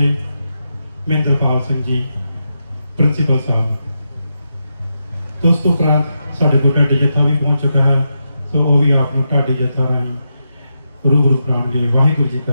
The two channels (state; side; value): inverted; both; correlation -0.86